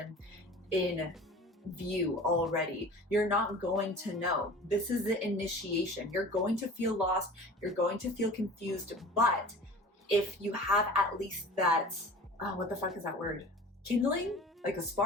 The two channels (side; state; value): both; normal; correlation 0.40